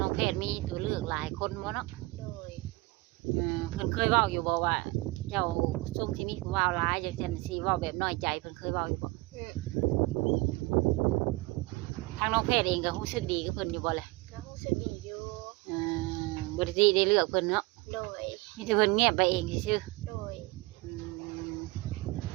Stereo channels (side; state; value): left; quieter; 23.2 dB